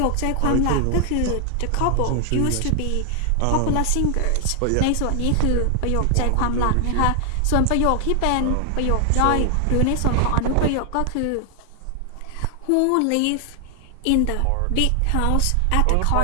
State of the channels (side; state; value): both; different; correlation 0.00